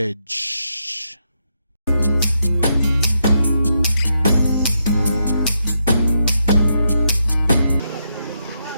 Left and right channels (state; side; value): inverted; both; correlation -0.81